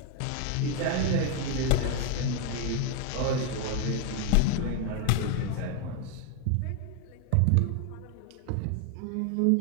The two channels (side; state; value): both; different; correlation 0.01